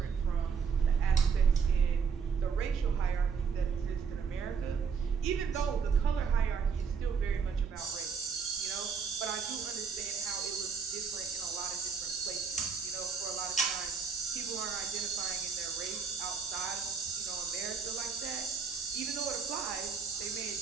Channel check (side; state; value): left; quieter; 5.9 dB